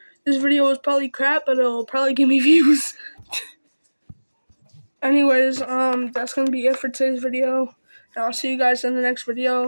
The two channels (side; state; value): both; inverted; correlation -1.00